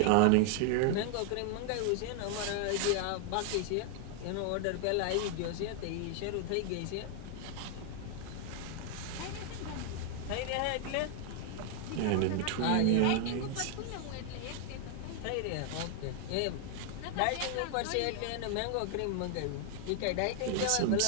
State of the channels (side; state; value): both; different; correlation 0.00